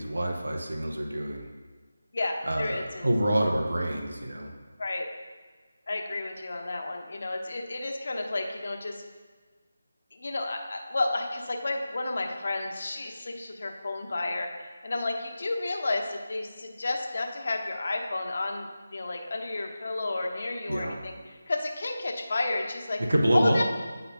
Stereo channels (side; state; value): both; inverted; correlation -0.94